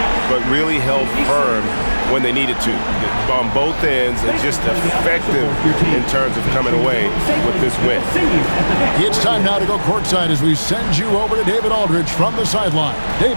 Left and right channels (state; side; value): inverted; both; correlation -1.00